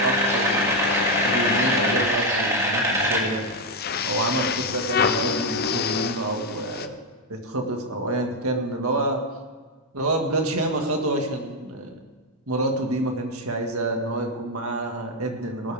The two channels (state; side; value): normal; both; correlation 0.04